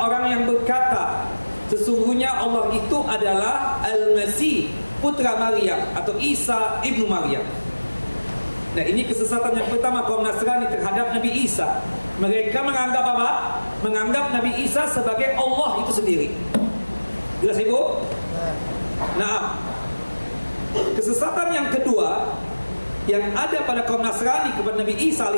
yang berkata sesungguhnya Allah itu adalah Al-Masih, putra Maryam, atau Isa ibnu Maryam. Nah, ini kesesatan yang pertama kaum Nasrani terhadap Nabi Isa. Mereka menganggap apa? Menganggap Nabi Isa sebagai Allah itu sendiri. Jelas Ibu? Nah, kesesatan yang kedua yang ada pada kaum Nasrani kepada Nabi Isa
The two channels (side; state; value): both; inverted; correlation -1.00